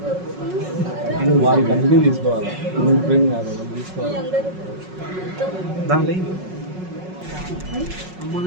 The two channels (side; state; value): left; late; 5.4 ms